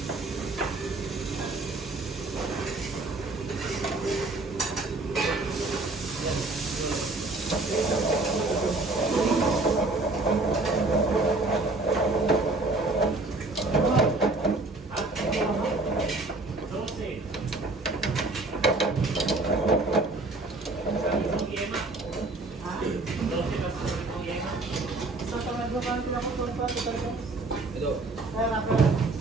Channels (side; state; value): left; quieter; 3.2 dB